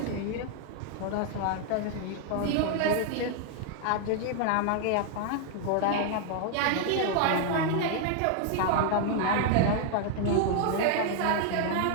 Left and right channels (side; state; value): both; different; correlation 0.00